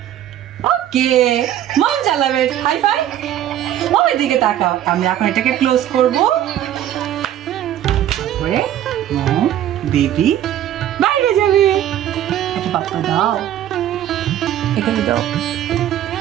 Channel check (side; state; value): left; quieter; 11.7 dB